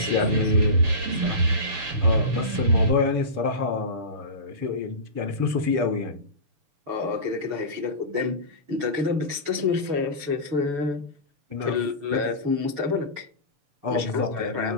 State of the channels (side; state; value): left; late; 6.9 ms